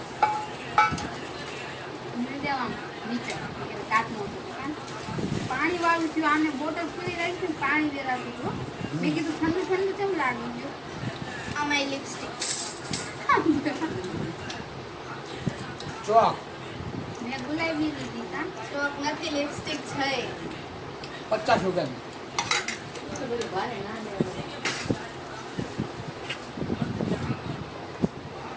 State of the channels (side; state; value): both; identical; correlation 1.00